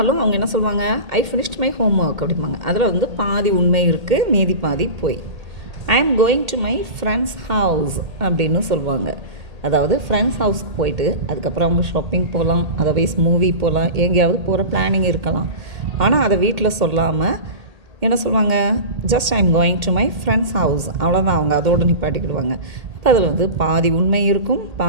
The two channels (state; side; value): late; left; 1.8 ms